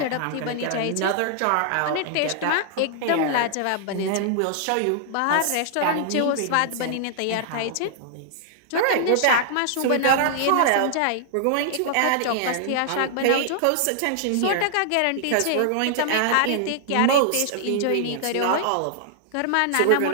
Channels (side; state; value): both; different; correlation -0.01